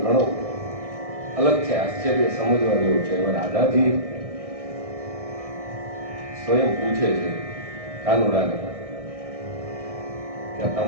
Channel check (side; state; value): left; late; 1.6 ms